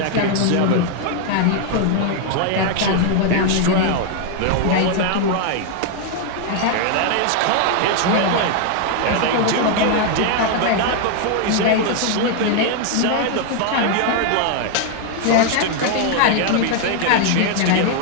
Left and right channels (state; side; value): different; both; correlation 0.00